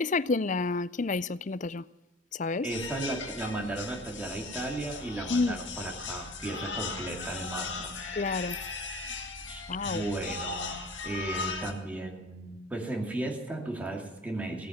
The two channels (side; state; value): both; normal; correlation 0.44